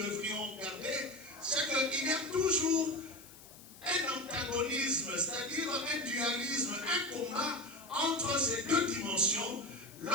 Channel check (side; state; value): left; noise; hiss, 19 dB below the sound